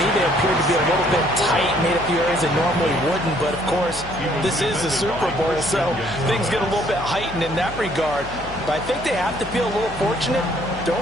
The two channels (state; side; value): noise; left; hum, 15 dB below the sound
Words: they appeared to be a little bit tight, made a few areas they normally wouldn't. But, of course, this is the Super Bowl, so things get a little bit heightened in that regard. But I think they have to feel a little fortunate. They're